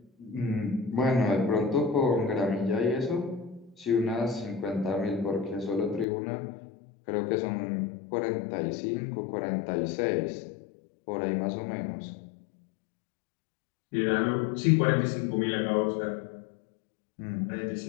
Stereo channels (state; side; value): drops out; right; at 6.1 s